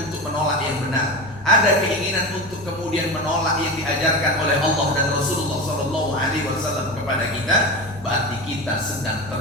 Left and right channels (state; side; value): normal; both; correlation 0.24